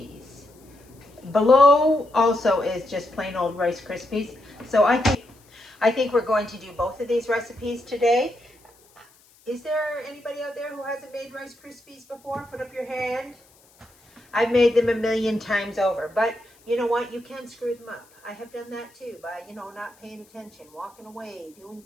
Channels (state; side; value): noise; left; hiss, 30 dB below the sound